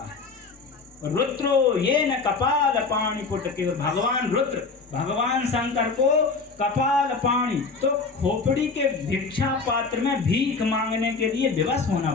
है। रुद्रो येन कपाल पाणि पुटके, और भगवान रुद्र, भगवान शंकर को कपाल पाणि, तो खोपड़ी के भिक्षा पात्र में भीख मांगने के लिए विवश होना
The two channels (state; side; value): quieter; right; 4.4 dB